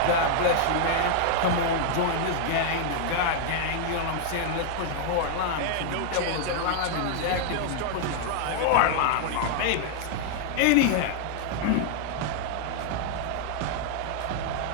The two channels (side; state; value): both; different; correlation 0.00